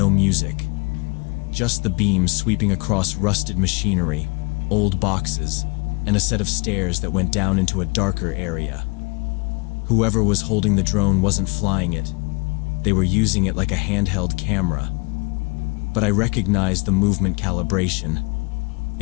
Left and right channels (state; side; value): quieter; right; 31.1 dB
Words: music. Just the beams sweeping across rusted machinery, old boxes, and a set of stairs that went down into a darker area. Whoever was holding the drone wasn't flying it. They were using it like a handheld camera. But I recognized the movement calibration.